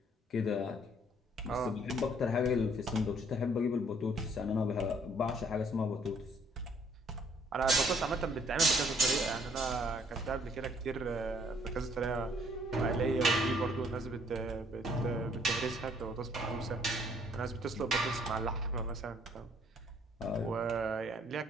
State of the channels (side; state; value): both; normal; correlation 0.63